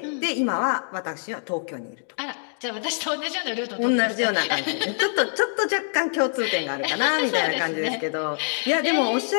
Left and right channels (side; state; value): right; silent; digital silence